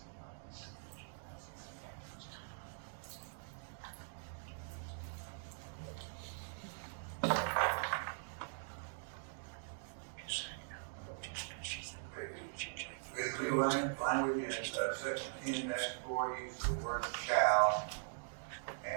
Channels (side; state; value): left; silent; digital silence